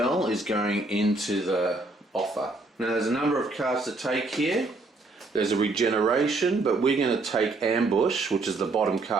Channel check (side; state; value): left; quieter; 3.2 dB